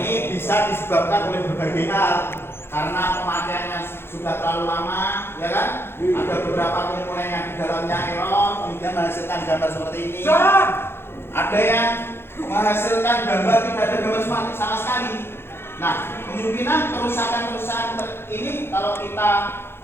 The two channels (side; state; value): right; late; 0.11 ms